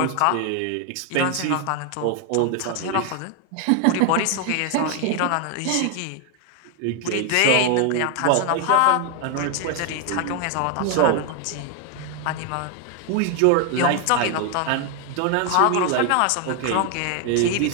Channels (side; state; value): both; different; correlation 0.00